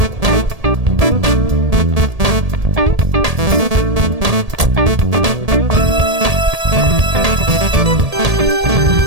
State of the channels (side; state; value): left; late; 1.8 ms